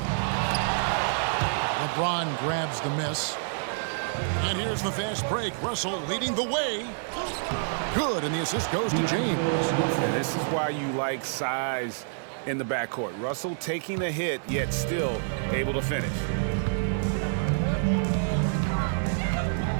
LeBron grabs the miss. And here's the fast break. Russell leading the way. Good, and the assist goes to James. And this is why you like size in the backcourt. Russell taking a hit, yet still able to finish.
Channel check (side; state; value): left; silent; digital silence